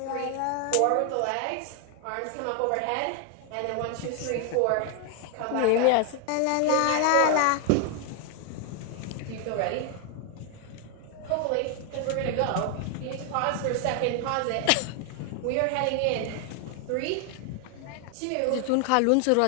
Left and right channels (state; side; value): different; both; correlation 0.00